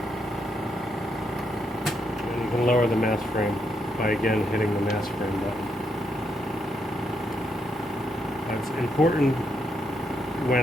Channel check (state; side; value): normal; both; correlation 0.79